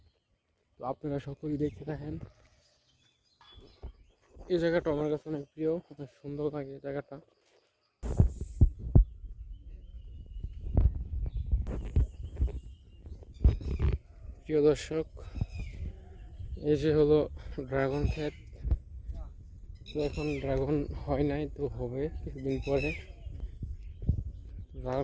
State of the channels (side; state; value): both; identical; correlation 1.00